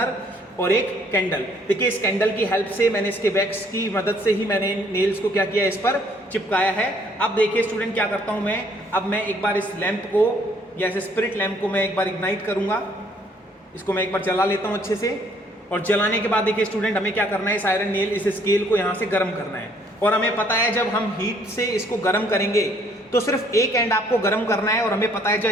और एक कैंडल. देखिए इस कैंडल की हेल्प से मैंने इसके वैक्स की मदद से ही मैंने नेल्स को क्या किया, इस पर चिपकाया है. अब देखिए स्टूडेंट क्या करता हूँ मैं, अब मैं एक बार इस लैंप को या इस स्पिरिट लैंप को मैं एक बार इग्नाइट करूंगा. इसको मैं एक बार जला लेता हूँ अच्छे से, और जलाने के बाद देखिए स्टूडेंट हमें क्या करना है, इस आयरन नेल, इस स्केल को यहाँ से गर्म करना है. और हमें पता है जब हम हीट से इसको गर्म करेंगे तो सिर्फ एक एंड आपको गर्म करना है, और हमें पता है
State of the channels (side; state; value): both; normal; correlation 0.63